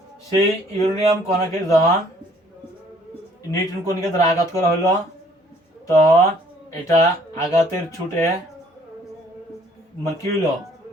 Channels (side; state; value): both; normal; correlation 0.60